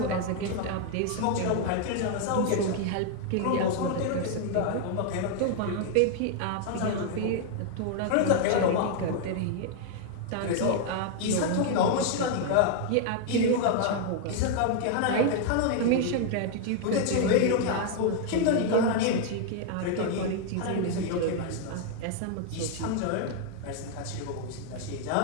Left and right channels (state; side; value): different; both; correlation 0.00